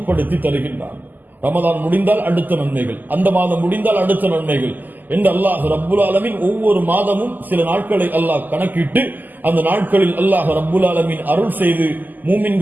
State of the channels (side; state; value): left; late; 0.086 ms